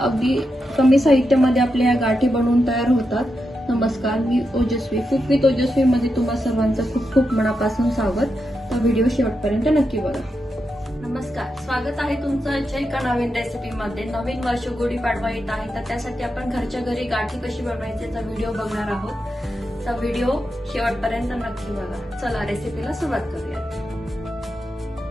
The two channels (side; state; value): both; normal; correlation 0.86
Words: कमी साहित्यामध्ये आपल्या या गाठी बनवून तयार होतात। नमस्कार, मी ओजस्वी, कुक विथ ओजस्वी मध्ये तुम्हा सर्वांचं खूप खूप मनापासून स्वागत। तर व्हिडिओ शेवटपर्यंत नक्की बघा। नमस्कार, स्वागत आहे तुमचं आजच्या एका नवीन रेसिपी मध्ये। नवीन वर्ष गुढीपाडवा येत आहे, तर त्यासाठी आपण घरच्या घरी गाठी कशी बनवायची याचा व्हिडिओ बघणार आहोत। तर व्हिडिओ शेवटपर्यंत नक्की बघा। चला रेसिपीला सुरुवात करूया।